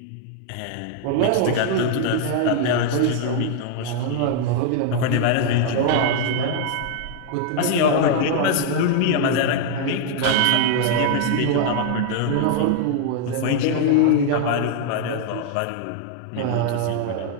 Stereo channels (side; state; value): both; different; correlation 0.00